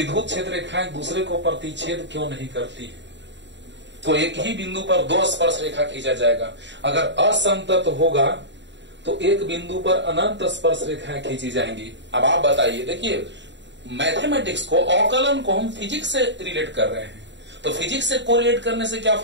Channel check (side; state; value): left; late; 0.52 ms